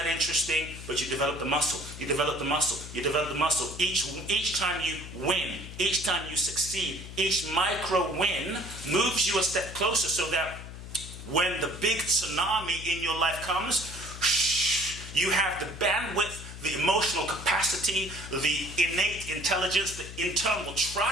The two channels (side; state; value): left; noise; hum, 12 dB below the sound